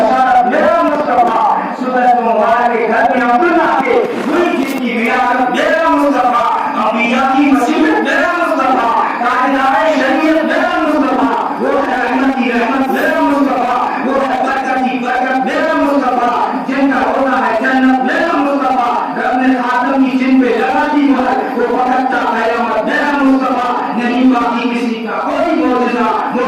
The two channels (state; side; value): identical; both; correlation 1.00